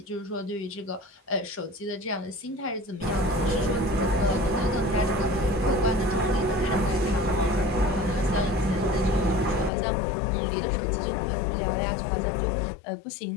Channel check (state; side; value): drops out; right; at 9.7 s